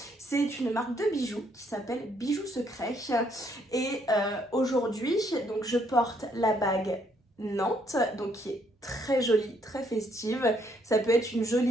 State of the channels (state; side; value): normal; both; correlation 0.70